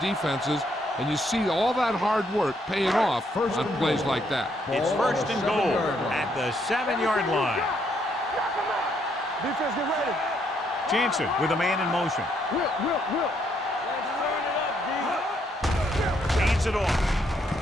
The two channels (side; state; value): both; normal; correlation 0.72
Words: and you see all that hard work paying off on plays like that. It's 1st and goal at the 7-yard line. Defense, get ready. Jansen with a man in motion. Whip. Let's turn it up, D. Hands it off.